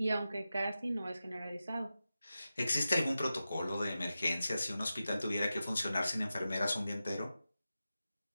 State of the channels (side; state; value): both; inverted; correlation -0.92